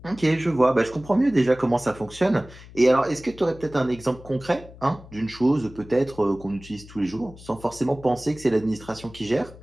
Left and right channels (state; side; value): noise; left; hum, 19 dB below the sound